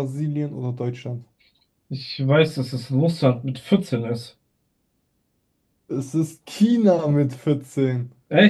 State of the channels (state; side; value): identical; both; correlation 1.00